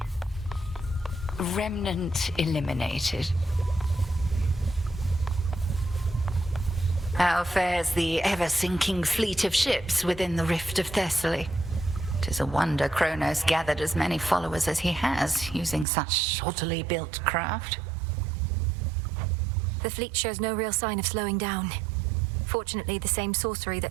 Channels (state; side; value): drops out; left; at 15.9 s